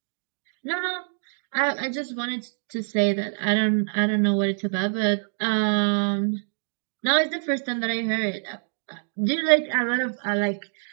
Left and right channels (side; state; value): left; silent; digital silence